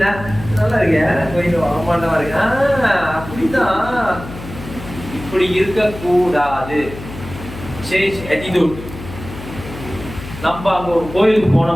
நல்லா இருக்கேன், கோயில் ஆமாண்டவா இருக்கு. அப்படிதான், இப்படி இருக்கக்கூடாது. Change attitude. நம்ம அங்க ஒரு கோயிலுக்கு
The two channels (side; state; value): left; noise; hum, 12 dB below the sound